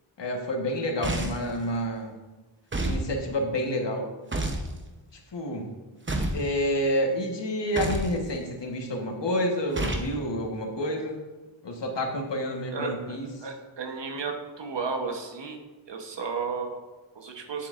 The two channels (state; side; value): normal; both; correlation -0.03